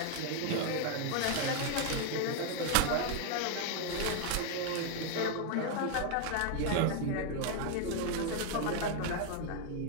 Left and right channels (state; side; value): different; both; correlation 0.00